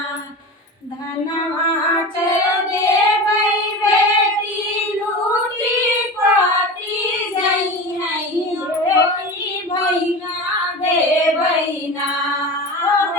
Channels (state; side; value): normal; both; correlation 0.29